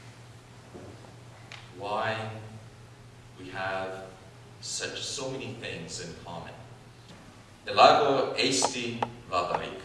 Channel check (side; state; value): both; identical; correlation 1.00